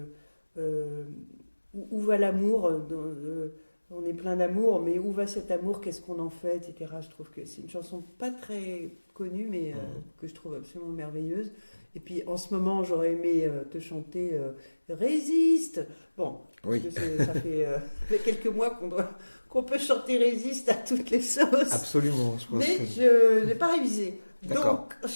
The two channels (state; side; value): inverted; both; correlation -1.00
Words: où va l'amour, on est plein d'amour, mais où va cet amour, qu'est-ce qu'on en fait, etc. Je trouve que c'est une chanson pas très connue, mais que je trouve absolument merveilleuse. Et puis en ce moment, j'aurais aimé te chanter Résiste. Bon, parce que ça fait quelques mois qu'on peut chanter Résiste à toutes les sauces. Absolument. Mais je n'ai pas révisé. D'accord. Donc,